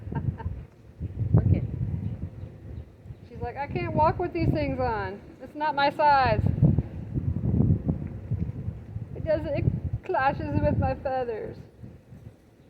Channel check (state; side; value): identical; both; correlation 1.00